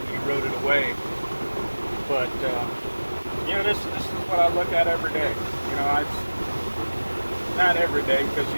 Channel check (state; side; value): inverted; both; correlation -1.00